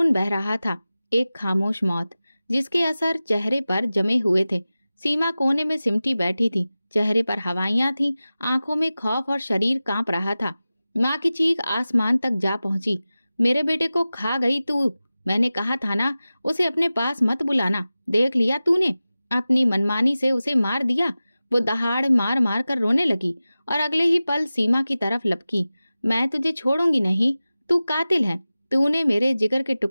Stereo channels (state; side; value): inverted; both; correlation -0.96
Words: बह रहा था। एक खामोश मौत जिसके असर चेहरे पर जमे हुए थे। सीमा कोने में सिमटी बैठी थी, चेहरे पर हवाइयां थीं, आंखों में खौफ और शरीर कांप रहा था। माँ की चीख आसमान तक जा पहुंची। मेरे बेटे को खा गई तू। मैंने कहा था ना उसे अपने पास मत बुलाना। देख लिया तूने, अपनी मनमानी से उसे मार दिया। वो दहाड़ मार मार कर रोने लगी और अगले ही पल सीमा की तरफ लपकी। मैं तुझे छोड़ूंगी नहीं, तू कातिल है। तूने मेरे जिगर के